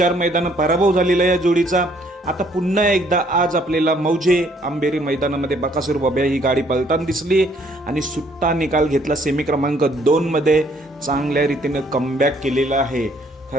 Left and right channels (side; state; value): both; normal; correlation 0.64